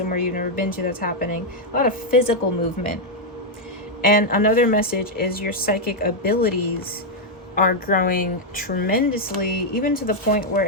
you've never been to, that's happening. A lot of physical movement. And another message is your psychic abilities are growing tremendously, even to the point where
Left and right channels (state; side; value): normal; both; correlation -0.01